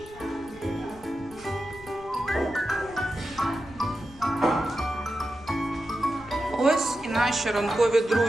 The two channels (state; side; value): noise; left; rumble, 21 dB below the sound